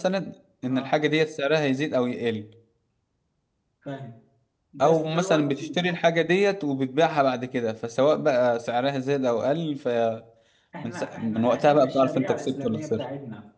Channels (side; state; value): both; identical; correlation 1.00